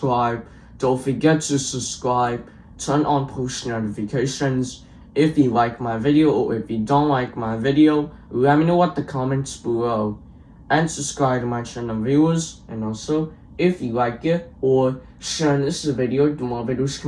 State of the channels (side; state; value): both; identical; correlation 1.00